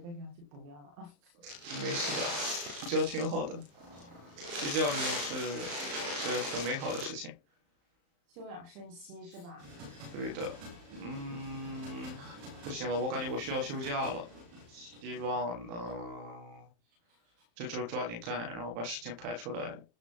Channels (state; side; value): late; left; 35 ms